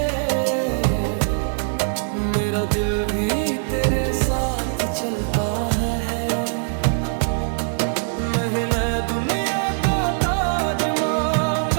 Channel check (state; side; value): silent; left; digital silence